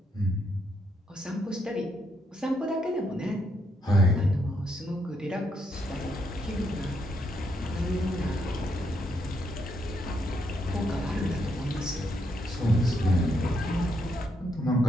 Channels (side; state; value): both; normal; correlation 0.77